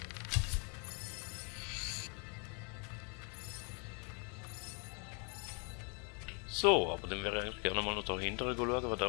So, aber dann wäre ich eigentlich gerne mal noch dahinter schauen, was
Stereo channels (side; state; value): right; quieter; 35.3 dB